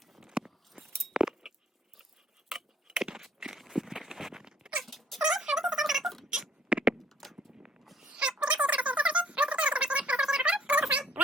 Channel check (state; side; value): normal; both; correlation 0.62